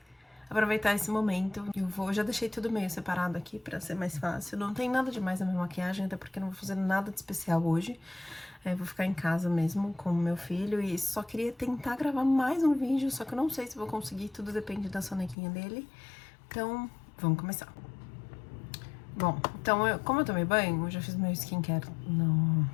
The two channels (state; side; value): drops out; right; at 15.4 s